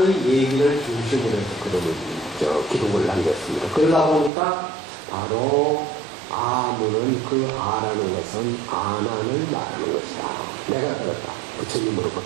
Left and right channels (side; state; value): left; drops out; at 4.3 s